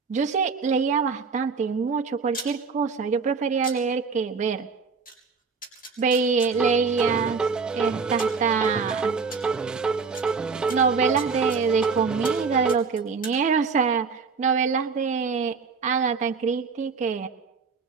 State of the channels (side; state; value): left; quieter; 5.1 dB